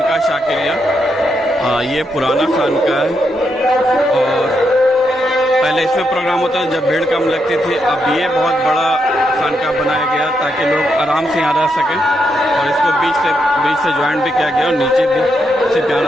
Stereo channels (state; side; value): normal; both; correlation 0.81